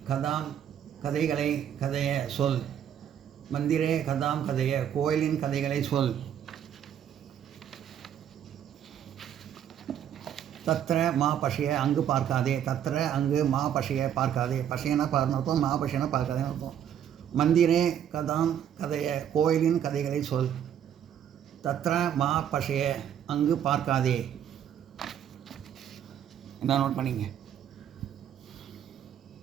கதைகளை கதைய சொல். மந்திரே கதாம் கதைய கோயிலின் கதைகளை சொல். தத்ர மா பஷய அங்கு பார்க்காதே. தத்ர அங்கு மா பஷய பார்க்காதே. பஷயனா பார்னு அர்த்தம், மா பஷயனா பார்க்காதேன்னு அர்த்தம். மந்திரே கதாம் கதைய கோயிலின் கதைகளை சொல். தத்ர மா பஷய அங்கு பார்க்காதே. என்ன நோட் பண்ணிங்க.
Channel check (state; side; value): quieter; left; 9.6 dB